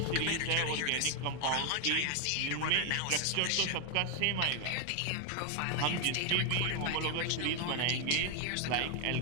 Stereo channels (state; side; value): different; both; correlation 0.00